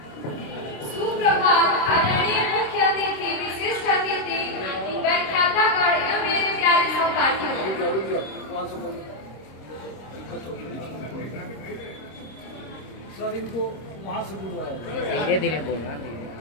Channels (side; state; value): right; late; 26 ms